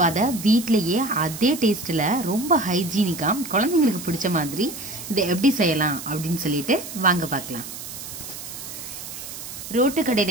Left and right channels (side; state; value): right; noise; hiss, 10 dB below the sound